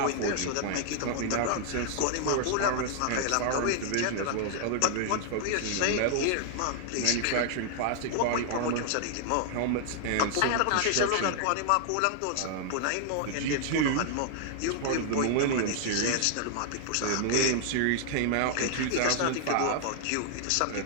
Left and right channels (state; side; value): different; both; correlation 0.00